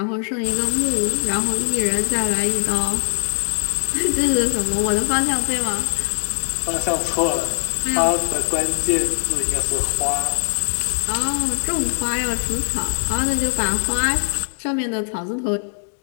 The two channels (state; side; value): silent; right; digital silence